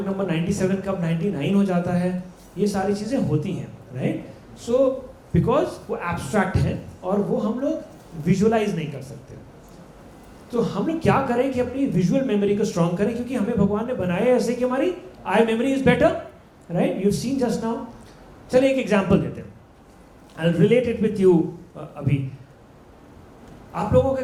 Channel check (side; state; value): both; identical; correlation 1.00